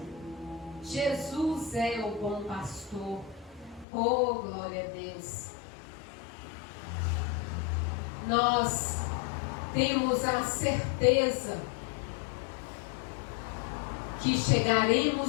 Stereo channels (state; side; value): drops out; right; at 3.9 s